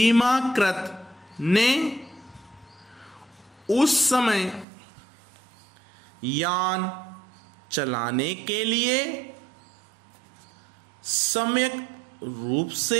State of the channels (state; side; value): drops out; left; at 4.7 s